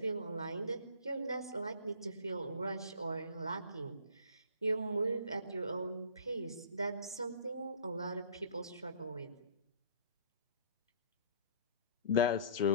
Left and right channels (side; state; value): both; inverted; correlation -0.46